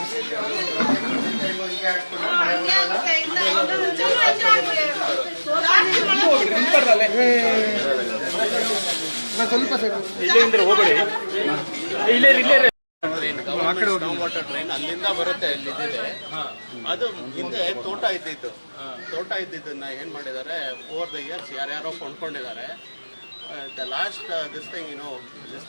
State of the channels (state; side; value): inverted; both; correlation -1.00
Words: ಹೋಗಬೇಡಿ ಇಲ್ಲೇ ವಾಟರ್ ಟ್ರೈನ್ ಅಲ್ಲಿಂದ ಬರುತ್ತೆ ಇಲ್ಲಿದೆ. ಅದು ಹಿಂದೆ ತೋಟ ಇದ್ದಿದ್ದನ್ನ ಏನ್ ಮಾಡಿದ್ದಾರೆ ಓವರ್ ದ ಇಯರ್ಸ್ ಯಾರ್ಯಾರೋ ಕೊಂಡ್ಕೊಂಡಿದ್ದಾರೆ. The last this